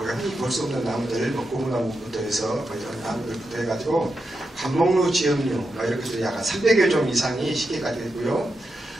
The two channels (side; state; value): both; normal; correlation 0.87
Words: 흔히 볼 수 없는 나무들, 고무나무부터 해서 이런 나무들부터 해가지고 관목류, 지역류 이렇게 약간 300여 종 이상이 시계까지 있고요.